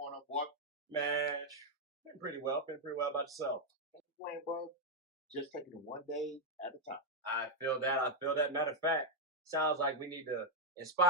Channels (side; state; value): both; normal; correlation 0.02